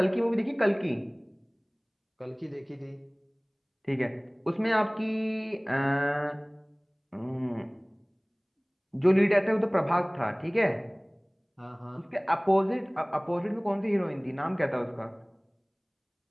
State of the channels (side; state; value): both; identical; correlation 1.00